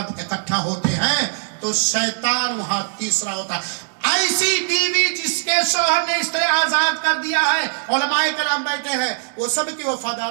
اکٹھا ہوتے ہیں تو شیطان وہاں تیسرا ہوتا ہے۔ ایسی بیوی جس کے شوہر نے اس طرح آزاد کر دیا ہے، علماء کرام بیٹھے ہیں، وہ سب کی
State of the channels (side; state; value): left; silent; digital silence